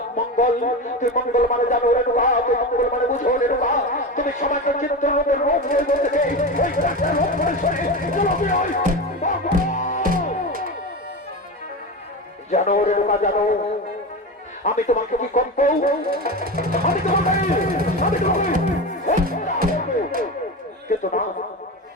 মঙ্গল। তুই মঙ্গল মানে জানো রেণুকা, তুই মঙ্গল মানে বুঝো রেণুকা। তুমি সমাজ চিত্রের রোগ জানো রেণুকা, জানো আমি তোমাকে কি করব? আমি তোমাকে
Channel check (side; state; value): both; normal; correlation 0.23